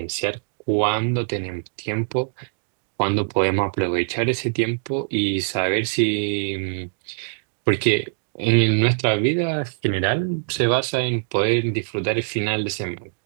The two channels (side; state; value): left; silent; digital silence